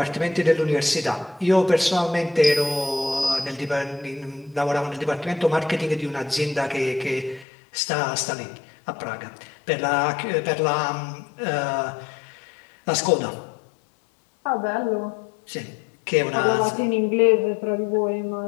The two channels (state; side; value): drops out; right; at 7.5 s